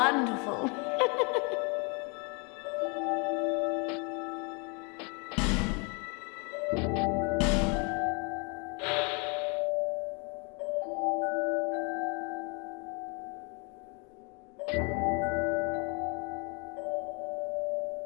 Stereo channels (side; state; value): right; quieter; 33.5 dB